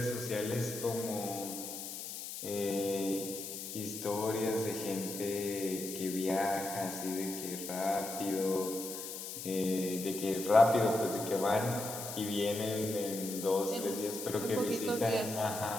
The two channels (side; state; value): left; noise; hiss, 8 dB below the sound